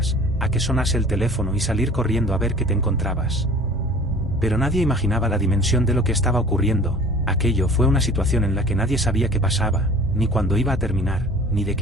a que sonase el teléfono y salir corriendo a ver qué te encontrabas. Pero nadie imaginaba la dimensión de lo que estaba ocurriendo. Aquello fue una situación en la que nadie sabía qué pasaba, ni cuándo iba a terminar, ni de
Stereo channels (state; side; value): normal; both; correlation 0.46